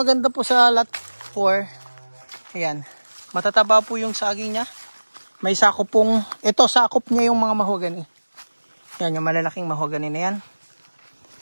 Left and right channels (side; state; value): both; inverted; correlation -1.00